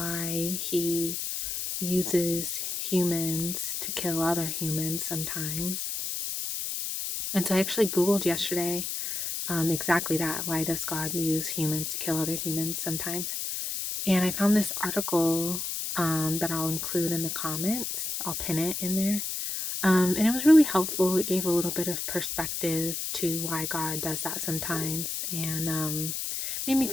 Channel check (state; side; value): noise; left; hiss, 3 dB below the sound